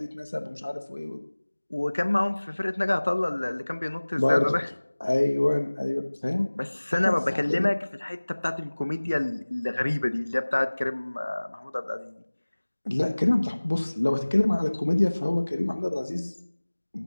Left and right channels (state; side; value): inverted; both; correlation -1.00